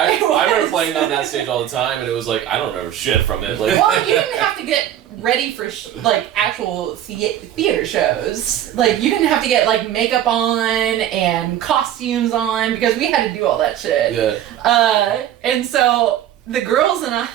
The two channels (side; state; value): left; quieter; 11.4 dB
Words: It remember was. playing on that stage all the time, and it was like, I don't remember shit from it. Like, well, you didn't have to get ready for like actual theater shows. Like you didn't have to get like makeup on and costumes on because we had to do all that shit. Yeah. And so the girls and I,